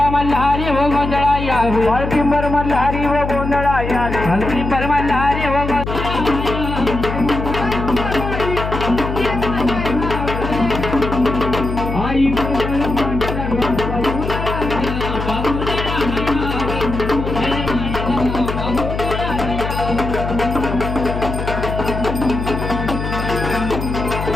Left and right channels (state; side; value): noise; left; hum, 4 dB below the sound